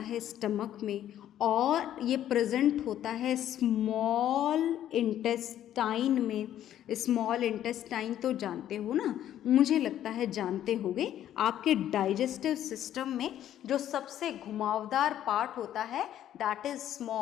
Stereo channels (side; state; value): right; quieter; 11.4 dB